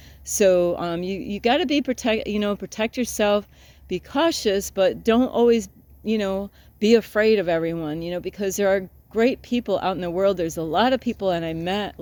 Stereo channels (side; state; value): both; identical; correlation 1.00